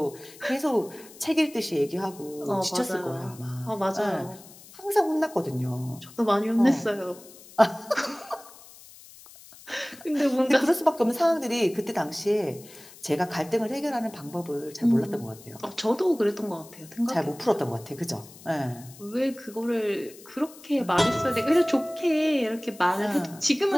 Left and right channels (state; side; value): noise; left; hiss, 20 dB below the sound